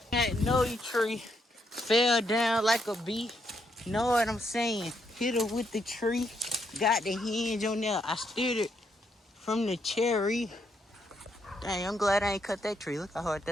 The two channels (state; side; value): normal; both; correlation 0.77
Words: magnolia tree fell down like a bee. Know what I'm saying? Hit her with the tree. Got the hinge on there. I steered it from the cherry. Dang, I'm glad I ain't cut that tree. Look how hard